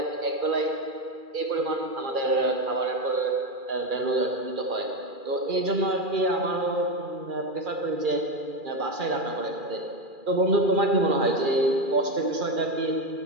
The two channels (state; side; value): late; left; 2.4 ms